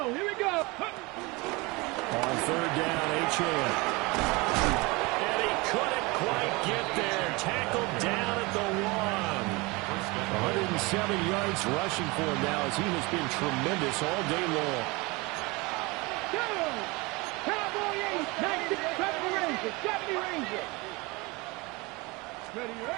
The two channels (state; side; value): quieter; left; 25.1 dB